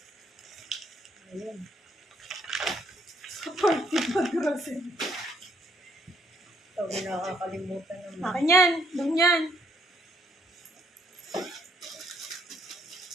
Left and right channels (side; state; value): both; normal; correlation 0.69